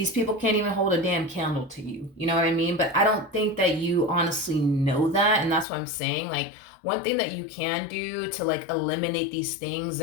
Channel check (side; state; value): right; drops out; at 5.7 s